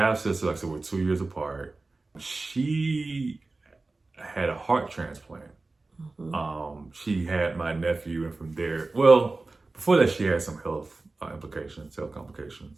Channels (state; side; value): quieter; left; 3.4 dB